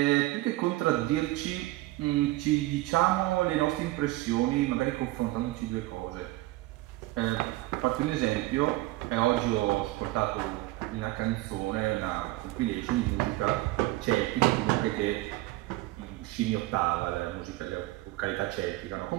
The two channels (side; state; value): left; quieter; 18.7 dB